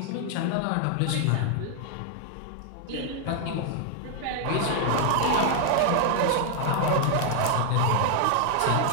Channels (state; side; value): different; both; correlation 0.00